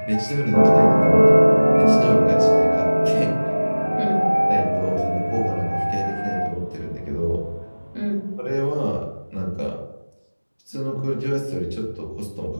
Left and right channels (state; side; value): inverted; both; correlation -1.00